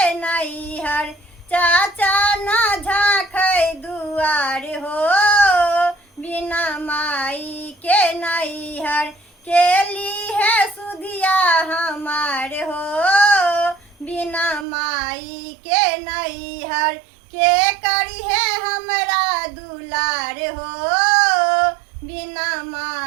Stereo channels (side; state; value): left; drops out; at 14.7 s